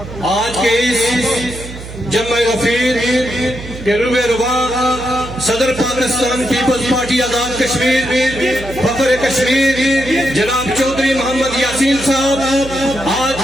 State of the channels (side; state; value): right; noise; hum, 13 dB below the sound